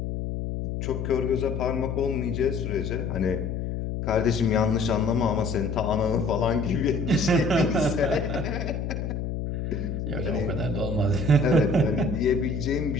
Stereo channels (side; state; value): left; noise; hum, 3 dB below the sound